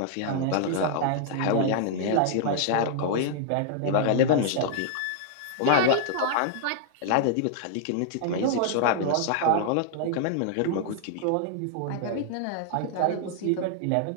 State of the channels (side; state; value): both; different; correlation -0.01